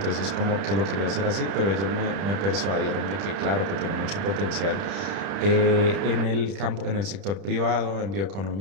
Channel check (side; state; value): left; late; 30 ms